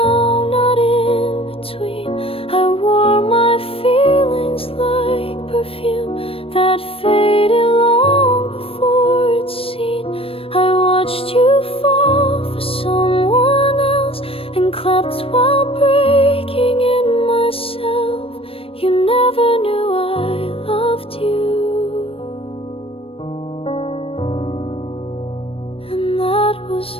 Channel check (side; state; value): right; late; 0.27 ms